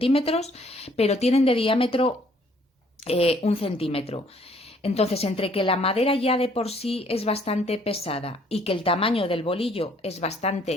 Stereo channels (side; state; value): both; normal; correlation 0.62